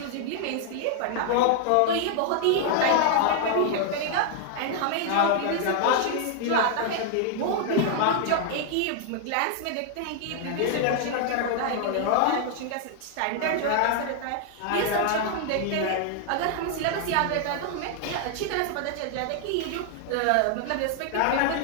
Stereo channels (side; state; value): both; different; correlation 0.00